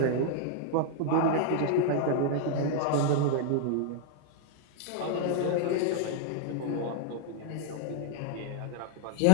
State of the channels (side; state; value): both; different; correlation 0.00